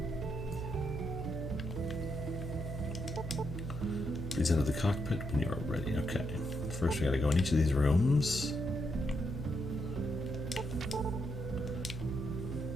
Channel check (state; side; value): noise; right; hum, 6 dB below the sound